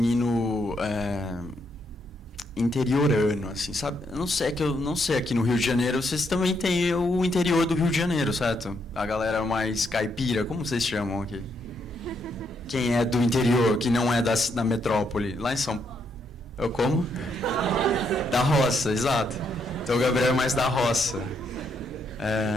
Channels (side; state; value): both; normal; correlation 0.76